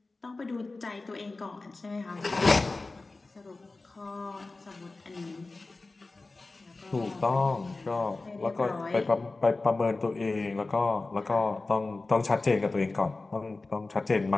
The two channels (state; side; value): quieter; right; 3.4 dB